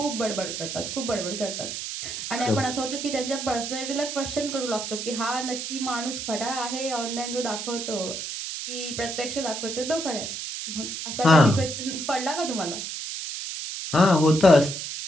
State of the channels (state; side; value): noise; right; hiss, 6 dB below the sound